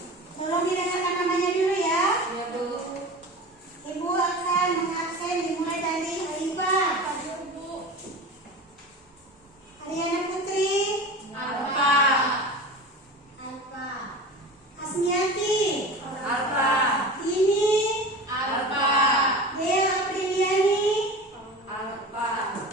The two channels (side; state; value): both; normal; correlation 0.32